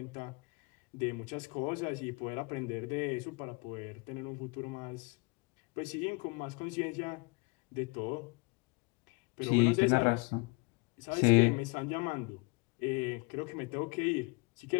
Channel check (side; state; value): right; quieter; 29.8 dB